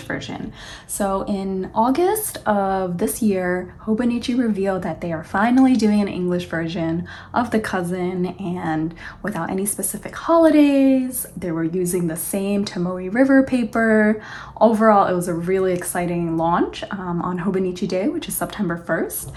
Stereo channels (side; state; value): both; identical; correlation 1.00